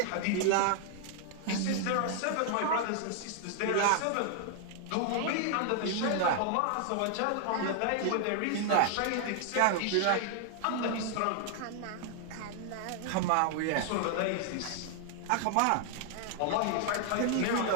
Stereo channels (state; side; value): different; both; correlation 0.00